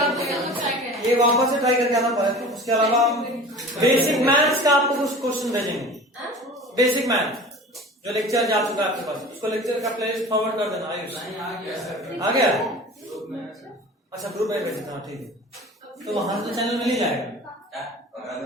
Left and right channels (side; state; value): both; normal; correlation 0.39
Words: ये वापस से ट्राई करके आना पड़ेगा। उसके अलावा बेसिक मैथ्स का आपको कुछ क्वेश्चन भेजेंगे। बेसिक मैथ जो लेक्चर जा चुका है आपके पास, उसको लेक्चर का प्लेलिस्ट फॉरवर्ड कर देना। आयुष आ गया? अच्छा ग्रुप में भेज देना, ठीक है। तो वहां से चैनल मिल ही जाएगा।